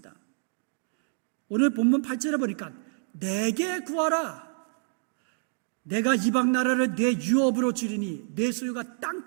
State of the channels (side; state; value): left; silent; digital silence